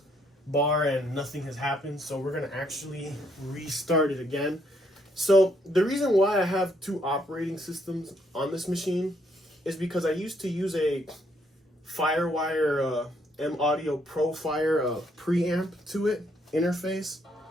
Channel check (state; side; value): normal; both; correlation 0.71